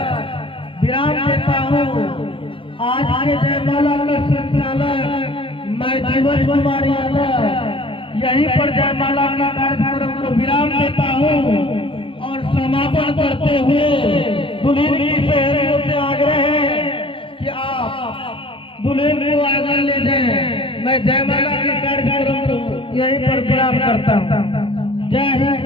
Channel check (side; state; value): right; late; 0.25 ms